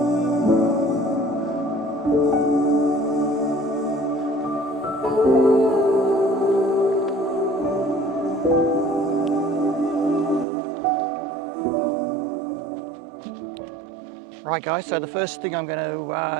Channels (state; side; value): drops out; left; at 10.5 s